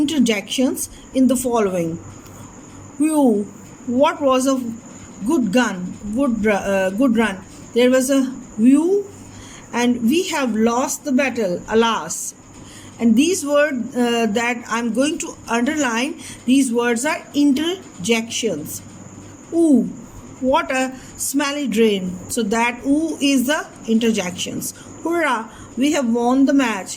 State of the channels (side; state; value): both; identical; correlation 1.00